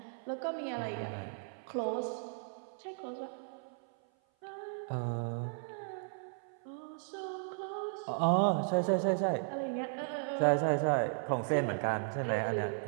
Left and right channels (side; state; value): left; silent; 54 dB below the other